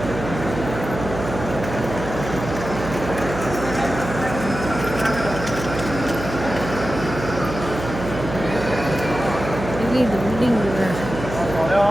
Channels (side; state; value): right; noise; hum, 8 dB below the sound